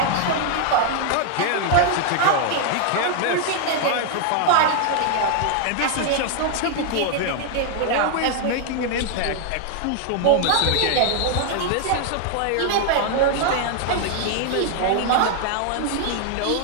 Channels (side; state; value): both; different; correlation 0.00